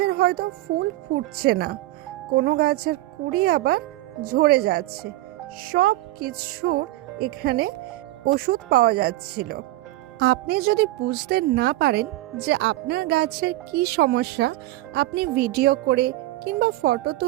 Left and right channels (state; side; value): quieter; left; 17.3 dB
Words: হয়তো ফুল ফুটছে না, কোনো গাছের কুঁড়ি আবার ঝরে যাচ্ছে, সব কিছুর এখানে ওষুধ পাওয়া যাচ্ছিল। আপনি যদি বুঝতে না পারেন যে আপনার গাছের কি সমস্যা, আপনি ভিডিও করে কিংবা ফটো